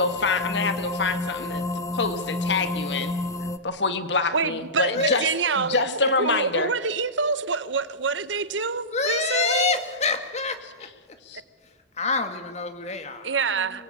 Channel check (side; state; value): both; normal; correlation -0.16